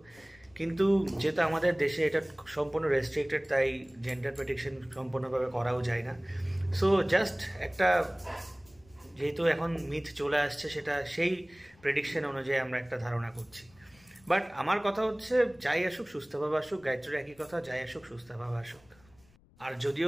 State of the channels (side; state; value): left; noise; rumble, 29 dB below the sound